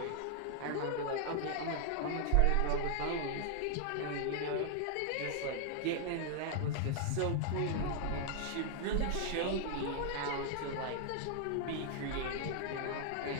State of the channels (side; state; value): both; different; correlation 0.00